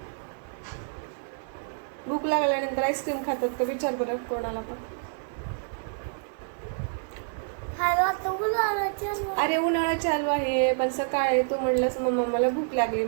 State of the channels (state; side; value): silent; left; 56 dB below the other